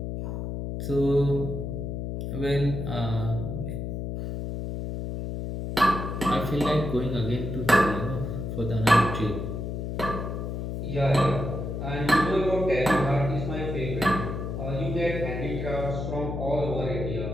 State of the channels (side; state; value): left; noise; hum, 4 dB below the sound